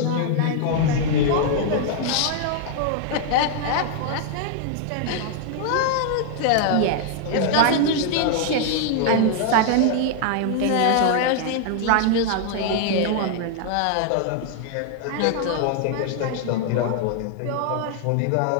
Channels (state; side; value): different; both; correlation 0.00